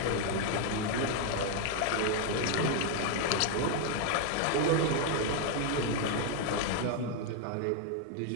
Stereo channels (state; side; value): different; both; correlation 0.00